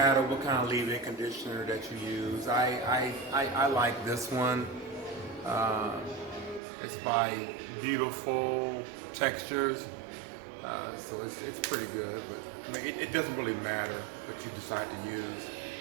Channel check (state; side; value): drops out; left; at 6.6 s